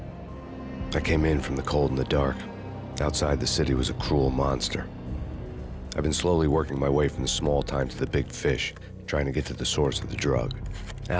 I came in from the cold and the dark. Outside the city was a cruel monster. I've been slowly working my way from the small time to the big fish, trying to get to the source of the drug.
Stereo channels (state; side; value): identical; both; correlation 1.00